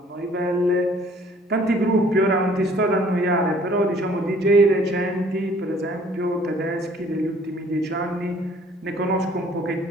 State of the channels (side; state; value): both; normal; correlation 0.57